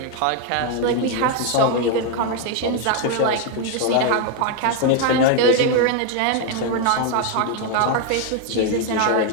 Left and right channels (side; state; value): both; different; correlation 0.01